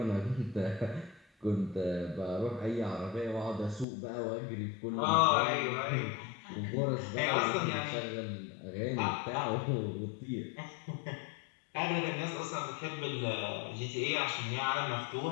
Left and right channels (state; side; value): drops out; right; at 3.9 s